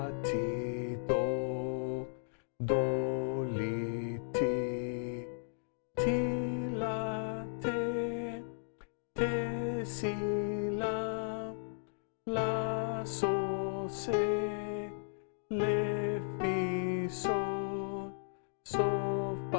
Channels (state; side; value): silent; right; digital silence